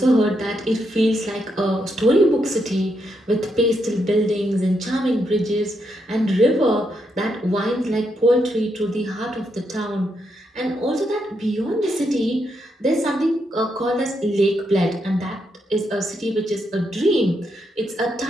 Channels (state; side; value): normal; both; correlation 0.80